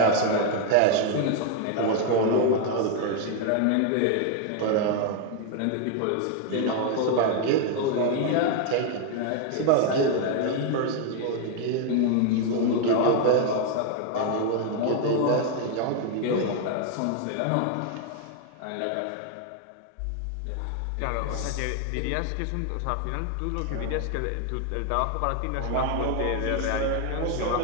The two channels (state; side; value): different; both; correlation 0.00